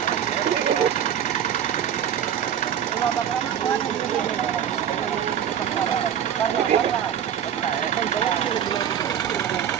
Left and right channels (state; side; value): quieter; left; 9.4 dB